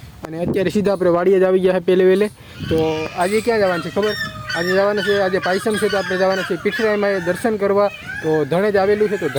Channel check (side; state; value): both; identical; correlation 1.00